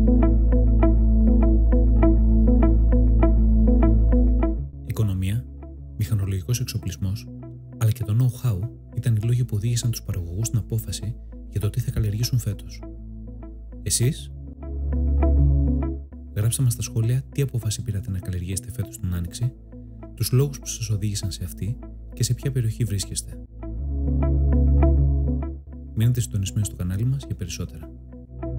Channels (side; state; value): both; identical; correlation 1.00